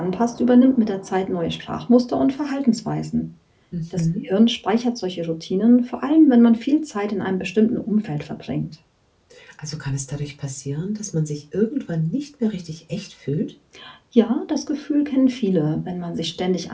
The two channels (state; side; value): identical; both; correlation 1.00